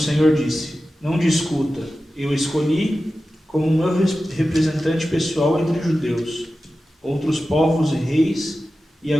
disse: não discuta, eu escolhi como meu representante pessoal entre judeus, outros povos e reis, e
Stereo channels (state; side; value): normal; both; correlation 0.94